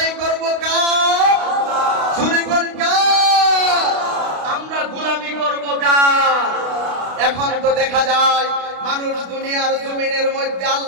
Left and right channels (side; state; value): left; late; 32 ms